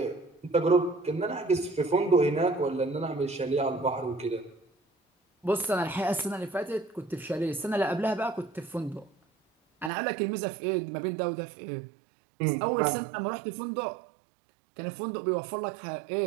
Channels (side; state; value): left; drops out; at 9.9 s